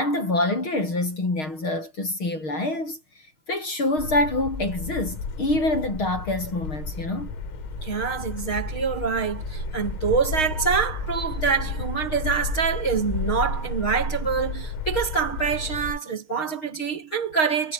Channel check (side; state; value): right; late; 6.4 ms